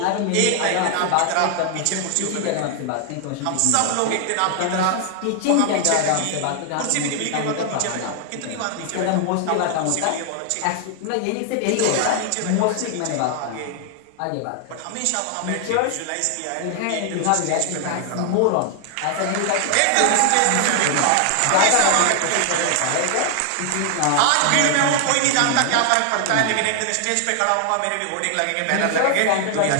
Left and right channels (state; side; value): different; both; correlation 0.00